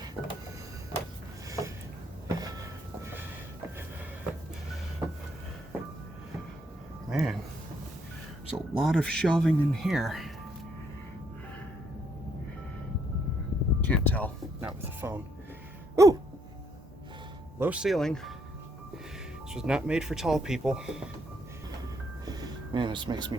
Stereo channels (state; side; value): normal; both; correlation 0.71